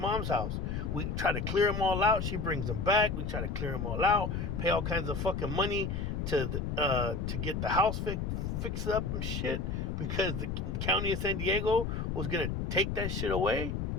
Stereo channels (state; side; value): noise; left; rumble, 2 dB below the sound